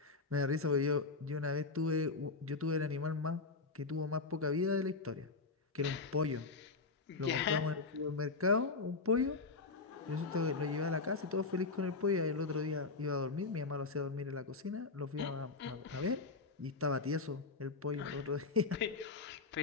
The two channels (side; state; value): right; quieter; 4.0 dB